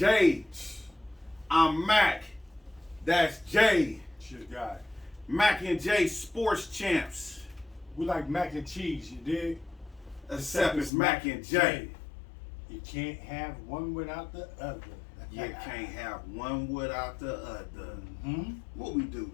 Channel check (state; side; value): drops out; right; at 10.9 s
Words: I'm Mac. That's Jay. Shit guy. Mac and J Sports Champs. We like mac and cheese, you dig? Except it's Mac and J. You can't have one without the other. You can't have one without the other. Hmm? What we do,